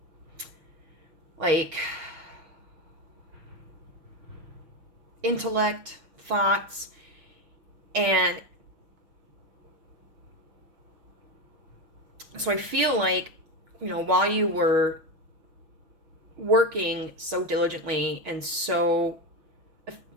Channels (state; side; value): late; left; 6.4 ms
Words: like intellect, thoughts, and so I feel like, you know, while you were working so diligently and so